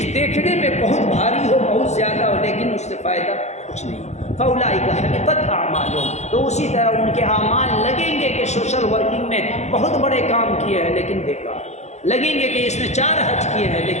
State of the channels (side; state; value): right; late; 0.33 ms